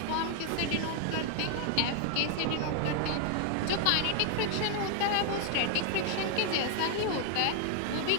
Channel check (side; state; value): both; different; correlation 0.00